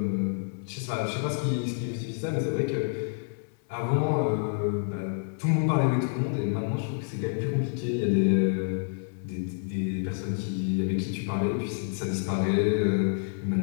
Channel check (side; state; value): right; silent; digital silence